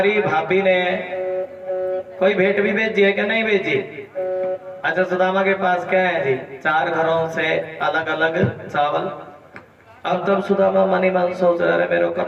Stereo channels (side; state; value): both; identical; correlation 1.00